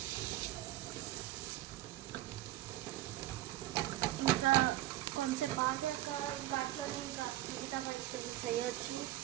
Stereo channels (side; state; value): left; quieter; 15.8 dB